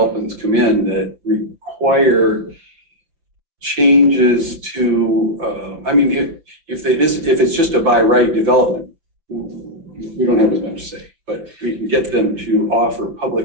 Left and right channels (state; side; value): late; left; 5.9 ms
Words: come in that require changes to, I mean, if it's just a by right development, we don't have as much to say, but we can get them to offer